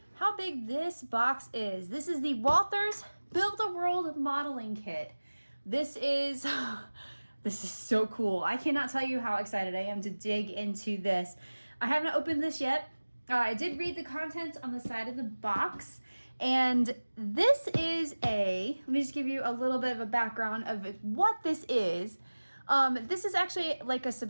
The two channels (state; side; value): inverted; both; correlation -1.00